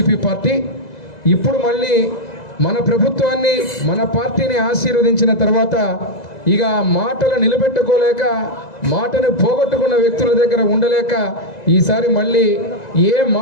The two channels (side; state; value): right; late; 2.0 ms